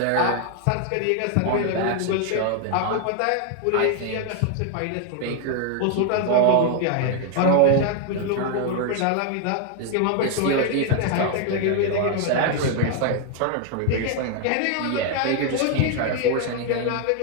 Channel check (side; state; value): both; different; correlation 0.00